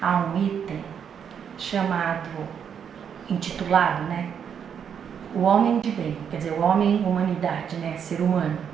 há um item intitulado, né? O homem de bem, quer dizer, o homem humanidade, né? Ser humano,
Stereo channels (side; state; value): left; quieter; 7.8 dB